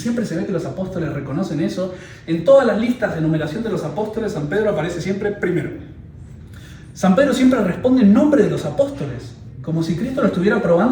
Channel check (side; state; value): both; identical; correlation 1.00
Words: se ve que los apóstoles reconocen eso. En todas las listas de numeración de los apóstoles, San Pedro aparece siempre primero. San Pedro siempre responde en nombre de los apóstoles, como si Cristo lo estuviera